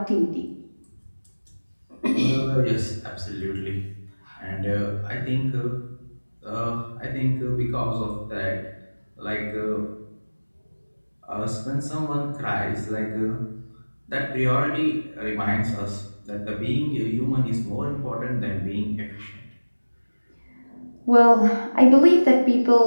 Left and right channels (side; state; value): both; inverted; correlation -1.00